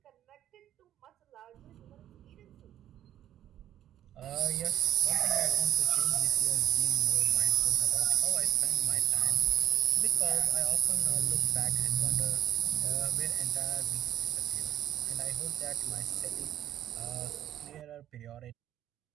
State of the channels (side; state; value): left; quieter; 11.6 dB